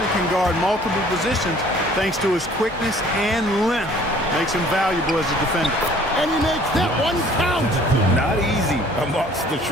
can guard multiple positions thanks to his quickness and length. Makes him valuable as a defender. And he makes that one count. Not easy amongst the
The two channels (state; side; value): normal; both; correlation 0.54